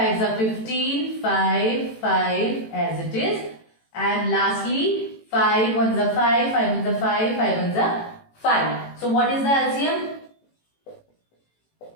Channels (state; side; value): late; right; 18 ms